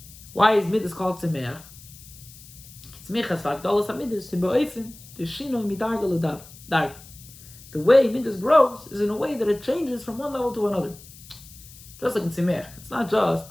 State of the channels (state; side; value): noise; left; hiss, 20 dB below the sound